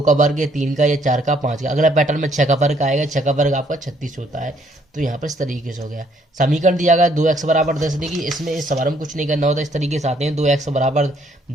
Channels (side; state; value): both; normal; correlation 0.66